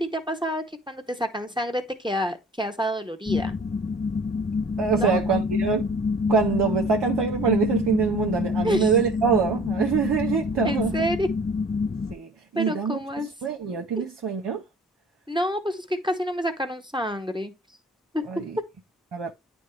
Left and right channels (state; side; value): normal; both; correlation 0.48